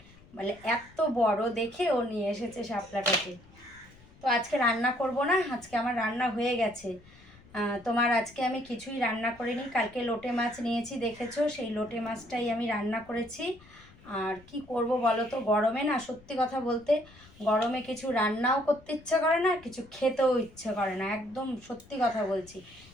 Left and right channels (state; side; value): noise; left; rumble, 24 dB below the sound